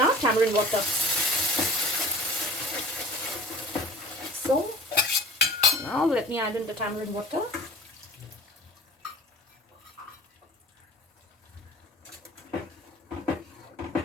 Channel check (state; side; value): normal; both; correlation 0.46